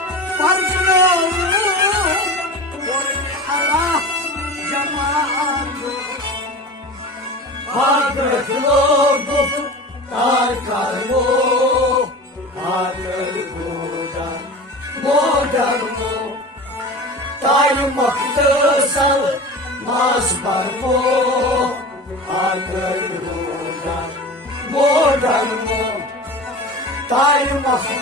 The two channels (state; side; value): normal; both; correlation 0.33